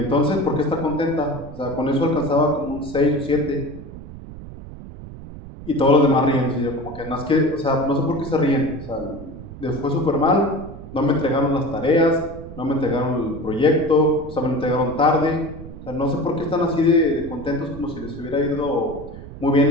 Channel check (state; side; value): noise; right; rumble, 14 dB below the sound